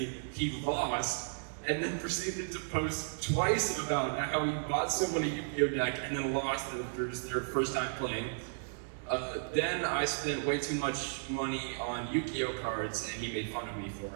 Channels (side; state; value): left; silent; digital silence